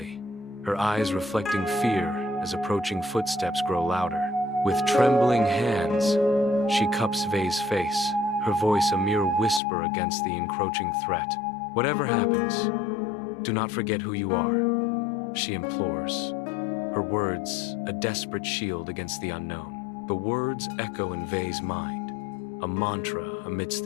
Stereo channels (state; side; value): drops out; right; at 9.6 s